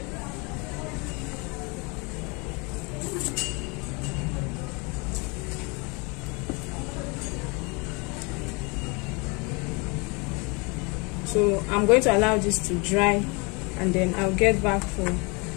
So I'm going to allow this to dry, and then I'll get back for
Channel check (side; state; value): right; quieter; 29.8 dB